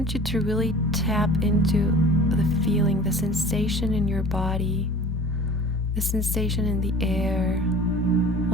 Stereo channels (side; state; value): both; normal; correlation 0.42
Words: you to really tap into the feeling, the sensation in your body, the sensation in the air,